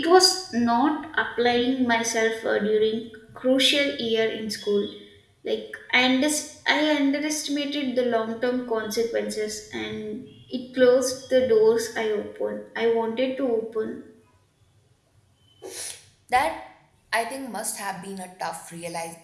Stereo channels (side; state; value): both; identical; correlation 1.00